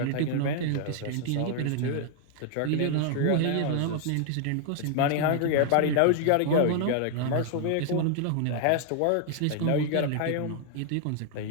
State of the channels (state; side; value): different; both; correlation 0.00